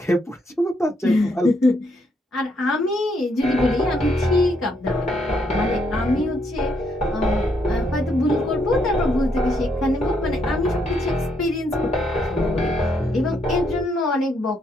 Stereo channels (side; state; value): both; normal; correlation 0.75